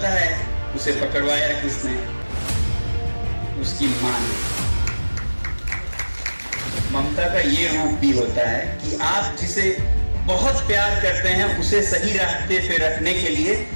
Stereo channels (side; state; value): both; inverted; correlation -1.00